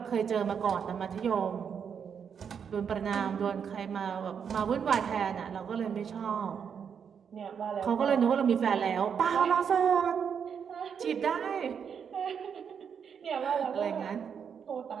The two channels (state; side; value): quieter; left; 7.2 dB